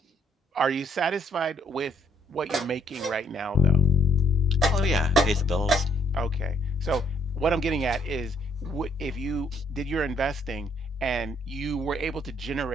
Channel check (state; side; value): normal; both; correlation 0.68